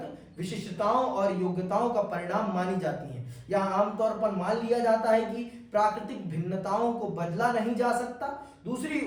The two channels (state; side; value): identical; both; correlation 1.00